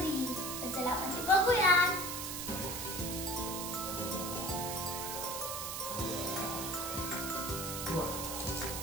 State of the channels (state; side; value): noise; right; hiss, 4 dB below the sound